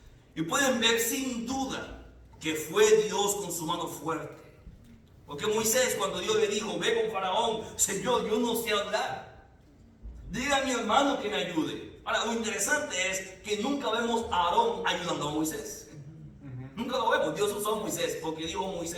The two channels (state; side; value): identical; both; correlation 1.00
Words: Y pueden ver sin duda que fue Dios con su mano fuerte. Porque Moisés, cuando Dios le dijo: ve con Faraón, Señor, yo no sé hablar. Dile a mi hermano que me ayude. Ahora, lo interesante es que nunca vemos a Aarón ayudando a Moisés. Nunca lo vemos. Dios usó a Moisés porque dijo